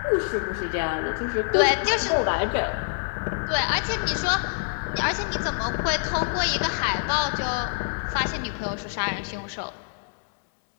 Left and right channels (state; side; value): silent; right; 61 dB below the other